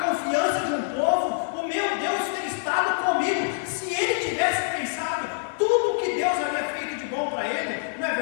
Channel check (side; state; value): right; silent; 61 dB below the other